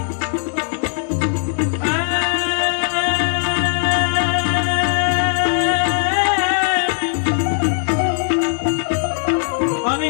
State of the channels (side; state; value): right; silent; digital silence